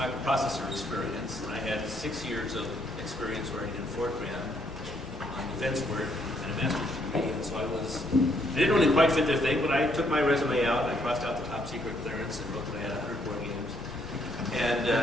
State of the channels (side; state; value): both; normal; correlation 0.71